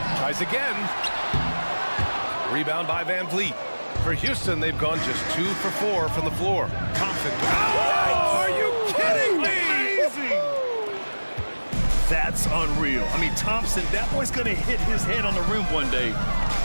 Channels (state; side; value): inverted; both; correlation -1.00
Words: Tries again. Rebound by VanVleet. For Houston, they've gone just 2 for 4 from the floor. Thompson. Oh, are you kidding me? Amazing! That's unreal. I mean, Thompson, that boy's going to hit his head on the rim one day.